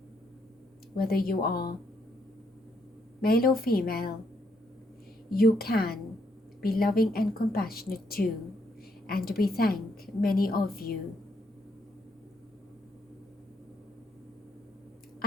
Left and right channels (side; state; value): both; normal; correlation 0.74